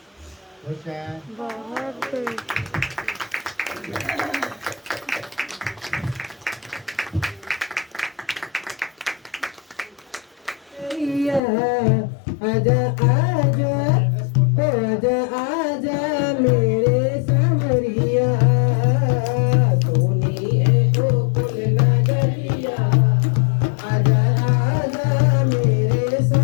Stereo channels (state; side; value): drops out; right; at 11.4 s